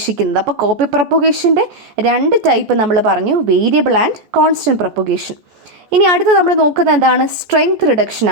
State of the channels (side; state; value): left; late; 14 ms